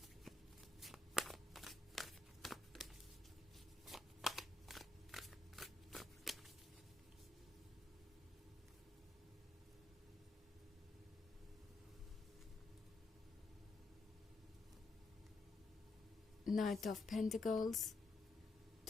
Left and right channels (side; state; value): right; quieter; 3.2 dB